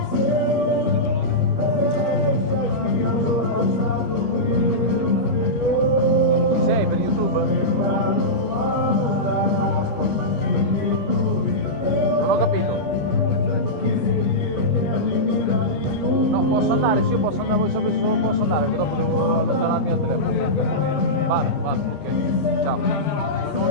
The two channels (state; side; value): normal; both; correlation -0.13